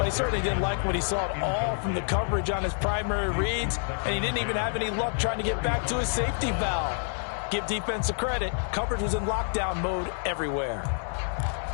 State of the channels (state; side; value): silent; right; 59 dB below the other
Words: he certainly didn't like what he saw at all from the coverage on his primary reads, and he didn't even have any luck trying to get back to his safety valve. Give defense a credit. Coverage was in lockdown mode everywhere.